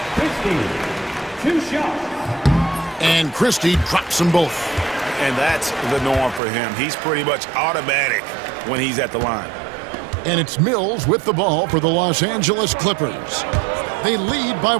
Christie, 2 shots. And Christie drops them both. And that's the norm for him. He's pretty much automatic when he's at the line. And it's Mills with the ball for the Los Angeles Clippers. They lead by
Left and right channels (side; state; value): left; drops out; at 6.4 s